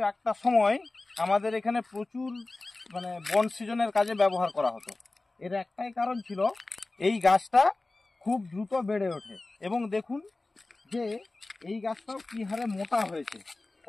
একটা সময় আমাদের এখানে প্রচুর বন সৃজনের কাজে ব্যবহার করা হতো। এর একটাই কারণ ছিল এই গাছটা খুব দ্রুত বেড়ে ওঠে, এবং দেখুন যে এই গাছটাও কী হারে মোটা হয়েছে,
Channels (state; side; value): quieter; right; 3.1 dB